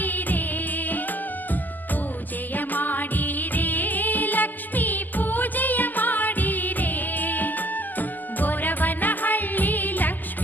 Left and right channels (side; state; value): right; late; 0.085 ms